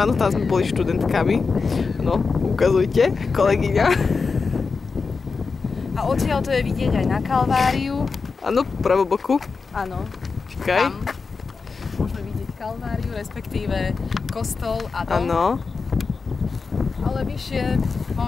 áno, tam sme boli študentkami. No, ukazujte, kolegyňa. A odtiaľ to je vidieť aj na Kalváriu. Áno, pravoboku. Áno. Čakaj. Tam môžeme vidieť Kalváriu, respektíve kostol a dom. Áno. Ale vyššie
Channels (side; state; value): right; quieter; 4.7 dB